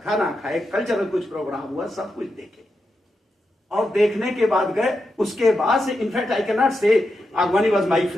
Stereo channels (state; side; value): normal; both; correlation 0.87